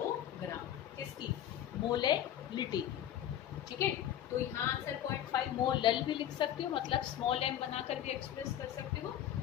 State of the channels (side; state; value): right; quieter; 11.1 dB